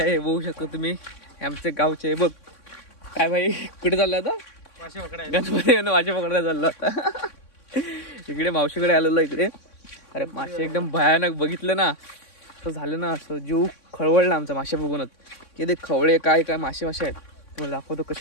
बघू शकतो तुम्ही, आमचे गावचे. बघ काय भाई, कुठे चालला आता? गणपती मासे पकडायला चालला होता. इकडे मावशीकडे आलेलो इकडे. अरे मासे एकदम भयानक बघितलं ना, असं झालं ना, असं जीव खळवळला आमचा मासे बघूनच. की ते खवळे काय काय मासे आहेत. तुम्हाला दाखवतो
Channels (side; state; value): right; late; 3.6 ms